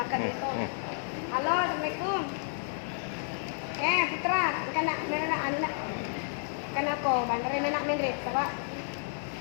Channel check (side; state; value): right; silent; digital silence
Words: nito. Halo, Assalamualaikum. Putra, kana ano na. Kana ko, bandarin na ni Pak.